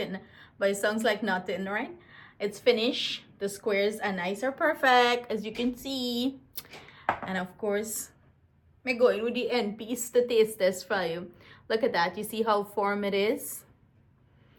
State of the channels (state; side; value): identical; both; correlation 1.00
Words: but it sounds like not in, right? It's finished. The squares are nice or perfect, as you can see. And of course, I'm going with the end piece to taste this for you. Look at that. You see how firm it is?